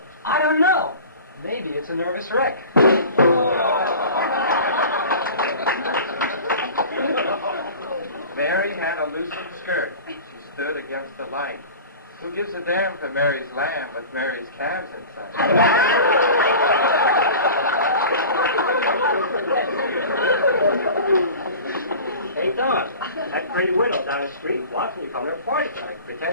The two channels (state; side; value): inverted; both; correlation -0.38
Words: I don't know. Maybe it's a nervous wreck. Mary had a loosened skirt. She stood against the light. Who gives a damn for Mary's lamb with Mary's calves inside? Hey, Don, that pretty widow down the street wants me to come to her party tonight,